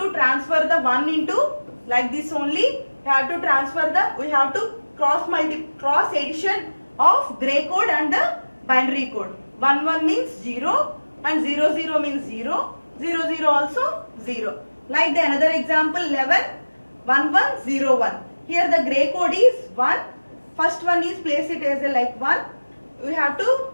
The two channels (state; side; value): inverted; both; correlation -1.00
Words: transfer the 1 into like this only. We have to transfer we have to cross addition of gray code and the binary code. 11 means 0 and 00 means 0. 00 also 0. Like the another example 111101. Here the gray code is 1. First one is place it as a like 1. We have to